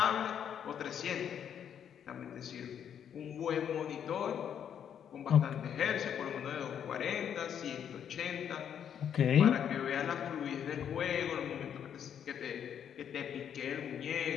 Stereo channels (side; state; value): right; quieter; 8.7 dB